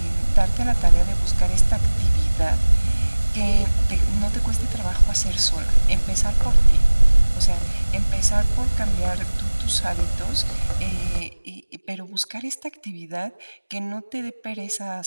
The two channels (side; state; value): both; inverted; correlation -1.00